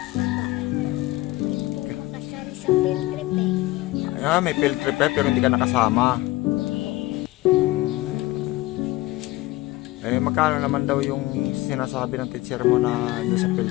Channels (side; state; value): right; quieter; 18.9 dB